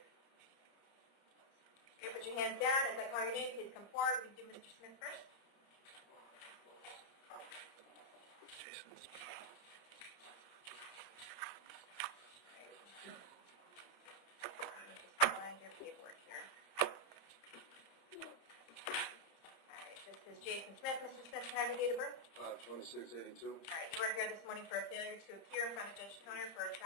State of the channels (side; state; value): right; late; 30 ms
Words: Okay, put your hands down. As I call your name, please come forward. We can do Mr. Smith first. Your paperwork here. All right, this is Jason Smith. Mr. Smith, can I have your date of birth? 5/26/82. All right, you are here this morning for a failure to appear in front of Judge Toner for